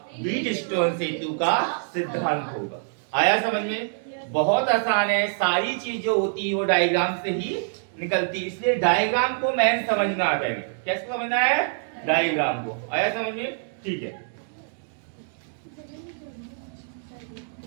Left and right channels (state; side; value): silent; left; digital silence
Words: व्हीटस्टोन सेतु का सिद्धांत होगा। आया समझ में? बहुत आसान है, सारी चीज जो होती है वो डायग्राम से ही निकलती है, इसलिए डायग्राम को मैन समझना आ जाएगा। कैसे समझना है डायग्राम को, आया समझ में? ठीक है।